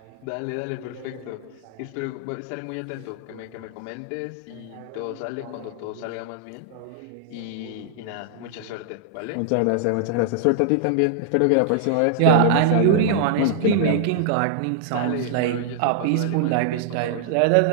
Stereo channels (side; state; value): both; different; correlation -0.01